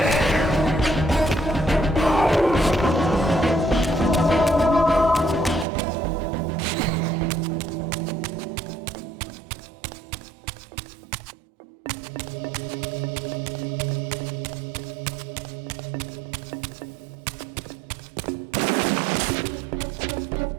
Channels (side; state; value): left; drops out; at 5.7 s